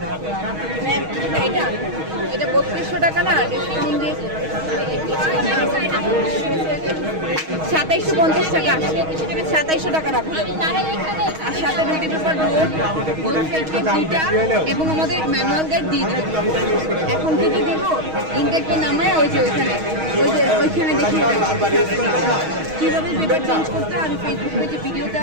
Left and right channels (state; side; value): late; left; 6.3 ms